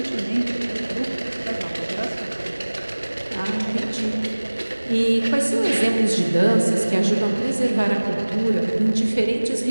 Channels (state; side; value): inverted; both; correlation -1.00